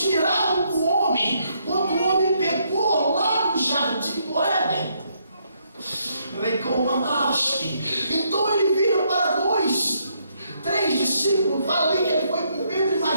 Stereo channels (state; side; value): inverted; both; correlation -0.74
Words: tirava o homem quando o homem pecou lá no jardim do Éden. Então ele vira para 2, 3 discípulos, fala ali que ele foi com Pedro e